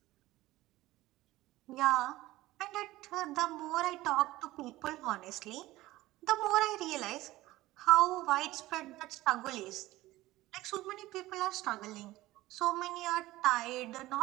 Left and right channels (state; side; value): quieter; left; 17.4 dB